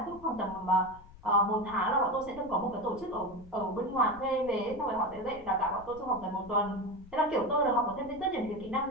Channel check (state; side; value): noise; left; rumble, 20 dB below the sound